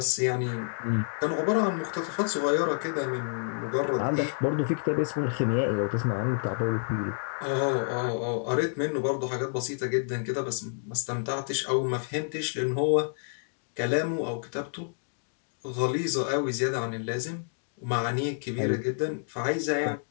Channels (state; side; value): silent; right; digital silence